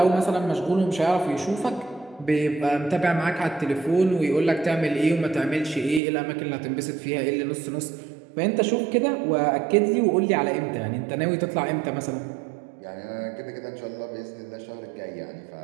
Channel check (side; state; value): left; drops out; at 6.0 s